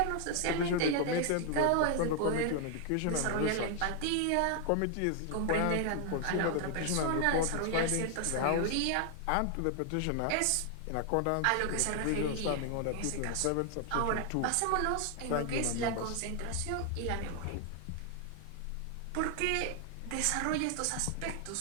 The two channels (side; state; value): both; different; correlation 0.00